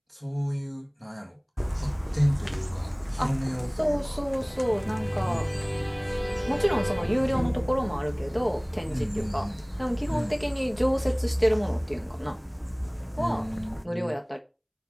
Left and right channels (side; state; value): both; identical; correlation 1.00